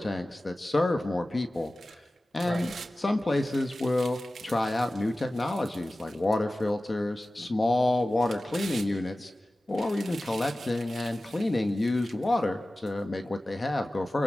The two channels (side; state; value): both; normal; correlation 0.96